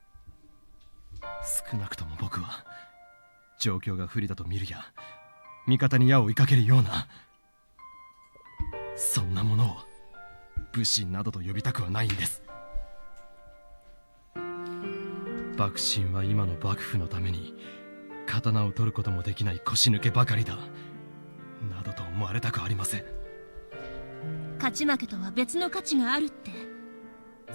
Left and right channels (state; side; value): inverted; both; correlation -1.00